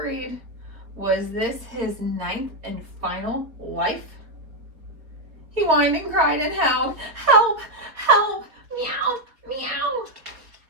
Was this his 9th and final life? He whined and cried and howled, "Help! Help! Meow! Meow!"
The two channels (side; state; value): left; late; 4.0 ms